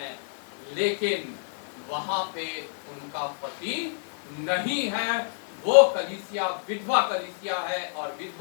लेकिन वहां पे उनका पति नहीं है। वो कलीसिया विधवा कलीसिया है और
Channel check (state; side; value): silent; right; digital silence